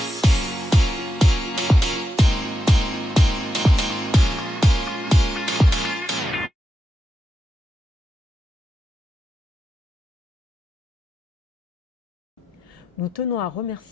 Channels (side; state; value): both; normal; correlation 0.87